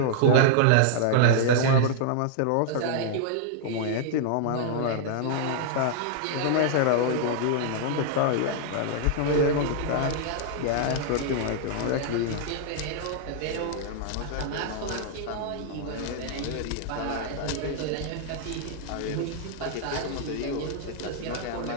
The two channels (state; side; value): different; both; correlation -0.01